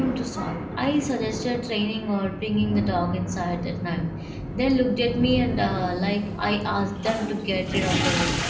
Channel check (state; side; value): identical; both; correlation 1.00